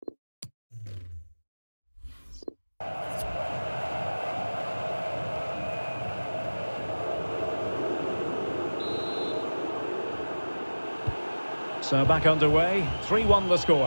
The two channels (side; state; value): both; inverted; correlation -1.00